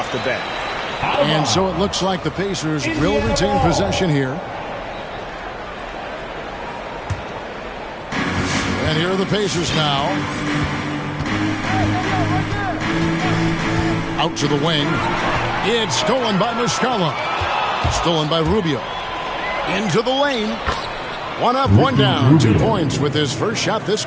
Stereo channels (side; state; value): both; identical; correlation 1.00